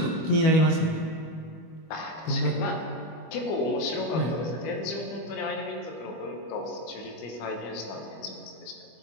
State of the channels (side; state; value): right; late; 25 ms